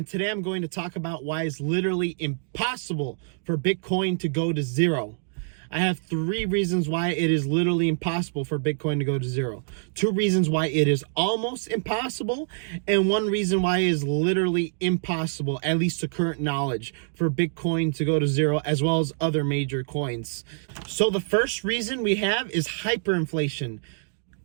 today I'm going to talk about why it's literally impossible for Bitcoin to go to zero. I have 3 reasons why it is literally impossible for Bitcoin to go to zero. 2 reasons why it is almost impossible, and 1 reason why it is literally impossible, at least to current knowledge, for Bitcoin to go to zero, as well as other major coins. So the first reason we have is hyperinflation.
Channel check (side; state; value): left; silent; digital silence